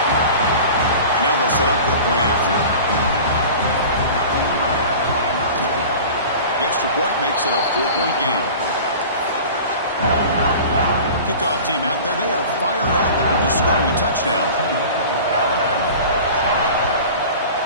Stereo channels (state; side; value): inverted; both; correlation -0.38